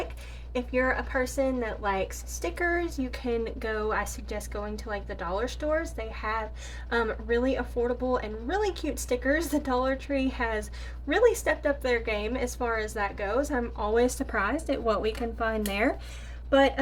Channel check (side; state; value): both; identical; correlation 1.00